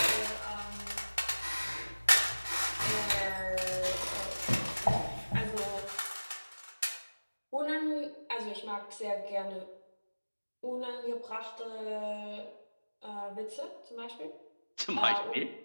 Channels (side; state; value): both; inverted; correlation -1.00